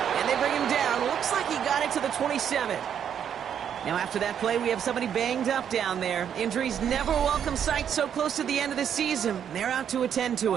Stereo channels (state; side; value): quieter; left; 8.7 dB